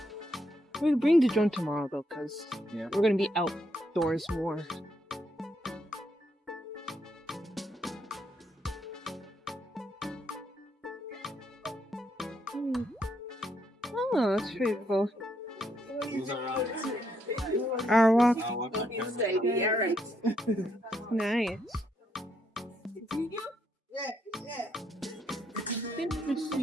We'll bring the drone tomorrow though, because we're gonna be outdoors more. Oh, that's pretty cool. Our walk. Nice.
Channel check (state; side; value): normal; both; correlation 0.76